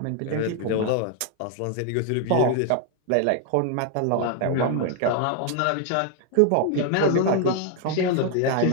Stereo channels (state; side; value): different; both; correlation 0.00